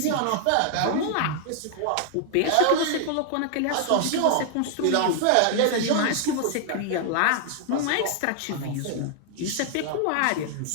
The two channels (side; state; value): both; different; correlation 0.00